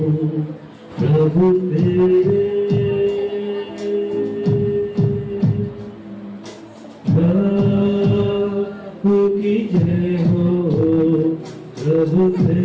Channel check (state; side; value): identical; both; correlation 1.00